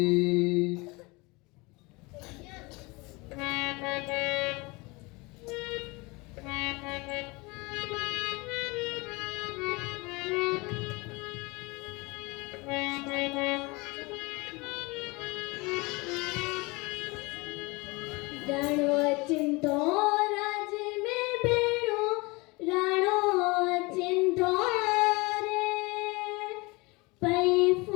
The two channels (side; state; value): right; quieter; 25.3 dB